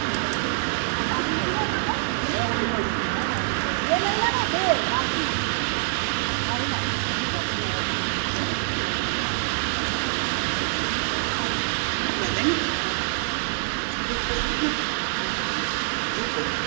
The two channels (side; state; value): left; silent; digital silence